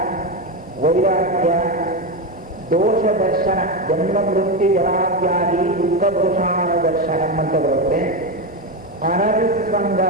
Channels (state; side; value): normal; both; correlation 0.12